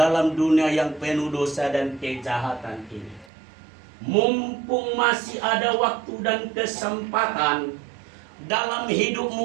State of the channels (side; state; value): left; drops out; at 3.2 s